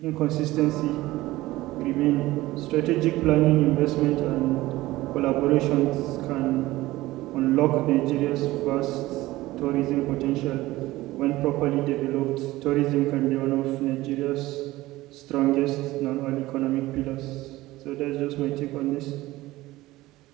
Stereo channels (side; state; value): left; quieter; 17.8 dB